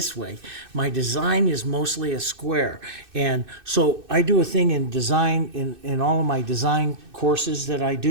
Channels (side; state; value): left; late; 2.6 ms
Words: way. My design is mostly a square. And so I do a thing in design, in all of my design courses that I